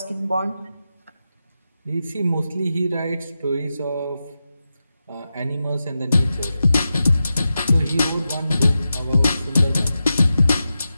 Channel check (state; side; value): inverted; both; correlation -0.91